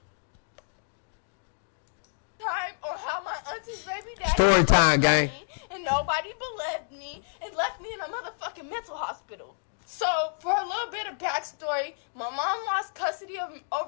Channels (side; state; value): right; silent; digital silence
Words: Time or how my auntie's baby daddy Story time, gang. and nobody believed me and left me in a motherfucking mental hospital. So, for a little bit of backstory, my mom lost custody